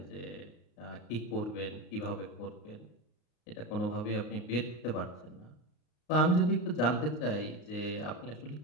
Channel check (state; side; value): late; right; 34 ms